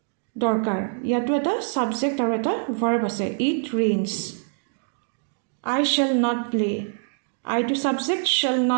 দৰকাৰ ইয়াতো এটা subject আৰু এটা verb আছে it rains I shall not play I to subject shall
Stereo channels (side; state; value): left; silent; digital silence